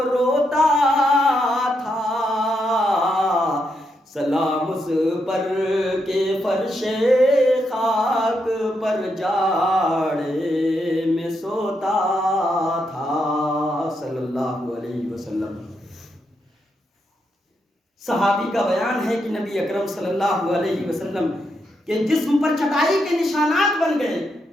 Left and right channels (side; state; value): both; normal; correlation 0.81